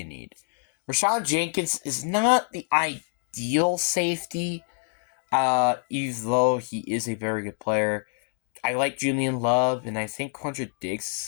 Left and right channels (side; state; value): right; silent; 61 dB below the other